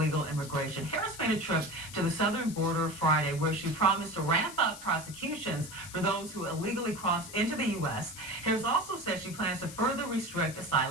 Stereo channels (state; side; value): noise; left; hiss, 14 dB below the sound